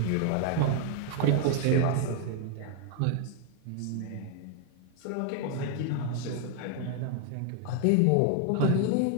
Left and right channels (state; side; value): different; both; correlation 0.00